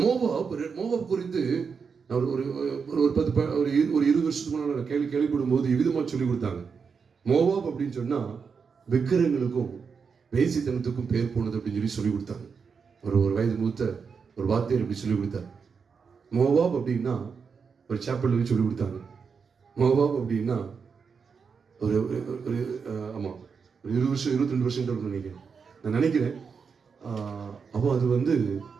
மோவாப் குறித்து ஒரு 20 வருஷத்துக்கு முன்னாடி கேள்விப்படும் போது விதமா சொல்லி கொடுத்தாங்க. மோவாப் அப்படின்னு சொன்னா விக்கிரங்களுக்கும் வேசித்தனத்துக்கும் பேர் போனது அப்படின்னு சொல்லி கொடுத்தாங்க. ஒரு வயது மூத்த ஒரு வாத்தியார் இப்படி சொல்லி கொடுத்தார். மோவாப் அப்படின்னா ஒரு சாப்பிள் சொல்லி கொடுத்தாங்க. மோவாப் அப்படின்னா ஒரு ஆமா ஒரு 20 வருஷம் 22 வருஷம் நினைக்கிறேன், நான் நினைக்கிறேன். அப்போ அது வந்து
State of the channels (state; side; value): quieter; left; 5.8 dB